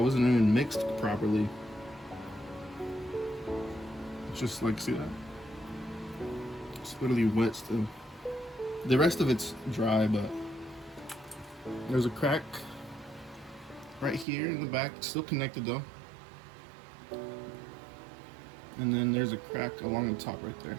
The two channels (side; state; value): left; drops out; at 14.2 s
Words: wasn't even mixed properly. It's just like, see that? It's literally wet still. The rest of it's dry, but there's a crack right here in the back, still connected though. And then there's a crack along the top right there.